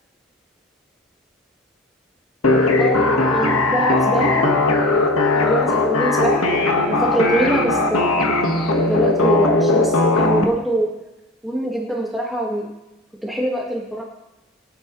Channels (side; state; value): both; normal; correlation 0.31